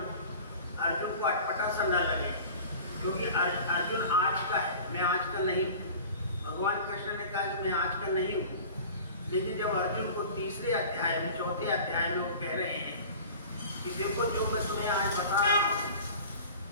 अर्जुन को अटपटा सा न लगे, क्योंकि अर्जुन आज का है, मैं आज का नहीं हूँ। भगवान कृष्ण ने कहा कि मैं आज का नहीं हूँ, लेकिन जब अर्जुन को 3रे अध्याय में 4थे अध्याय में वो कह रहे हैं कि देखो जो मैं तुम्हें आज बता रहा हूँ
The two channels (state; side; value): inverted; both; correlation -0.40